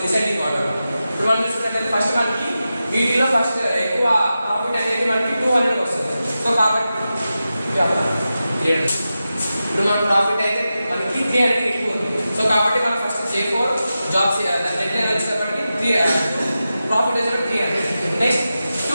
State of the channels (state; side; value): inverted; both; correlation -0.92